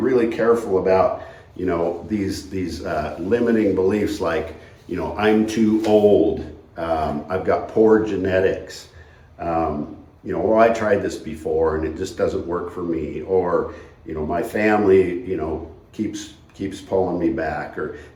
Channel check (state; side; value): identical; both; correlation 1.00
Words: careful about, these limiting beliefs like, I'm too old, I've got poor genetics, well, I tried this before and it just doesn't work for me, or, my family, keeps pulling me back, or,